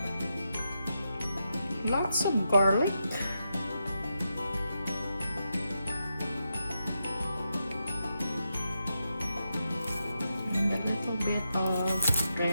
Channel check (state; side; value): inverted; both; correlation -0.86